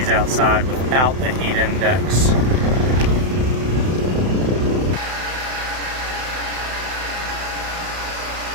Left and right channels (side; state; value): left; late; 31 ms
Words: outside without the heat index.